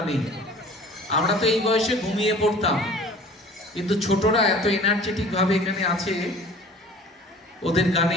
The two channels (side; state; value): both; normal; correlation 0.46